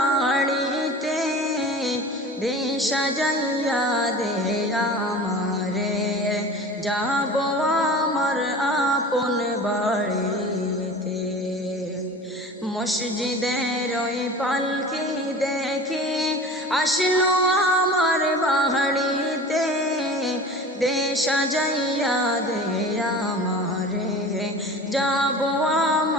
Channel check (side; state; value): both; normal; correlation 0.37